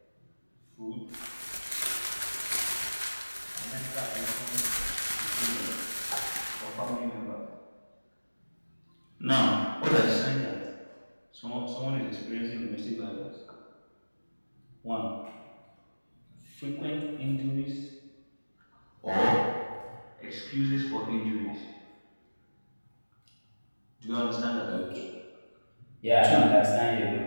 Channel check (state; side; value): inverted; both; correlation -1.00